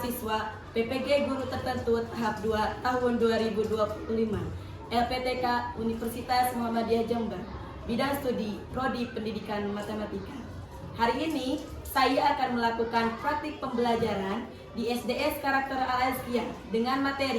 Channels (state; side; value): identical; both; correlation 1.00